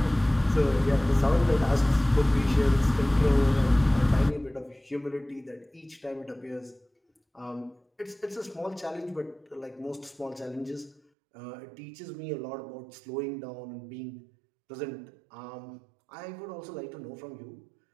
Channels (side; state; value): left; drops out; at 11.0 s